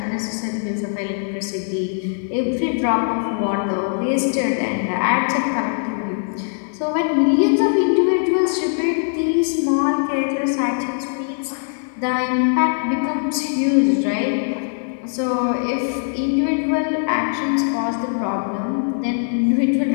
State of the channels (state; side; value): silent; right; 65 dB below the other